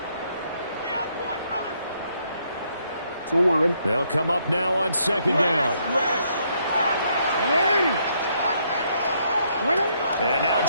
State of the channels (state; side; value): inverted; both; correlation -0.72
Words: They'll come up now on 2nd down. And now